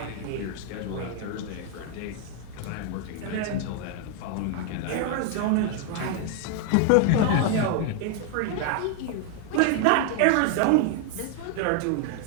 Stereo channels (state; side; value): different; both; correlation 0.00